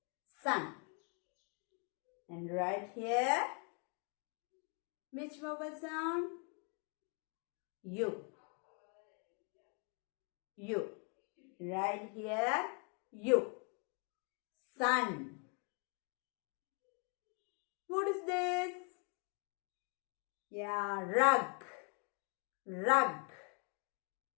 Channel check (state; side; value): quieter; right; 37.6 dB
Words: Sun. And right here, which vowel sound? U. U. Right here, U. Sun. What is this? Yeah, rug. Rug.